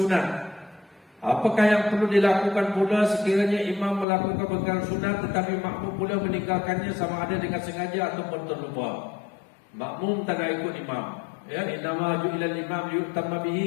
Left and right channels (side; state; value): right; drops out; at 4.0 s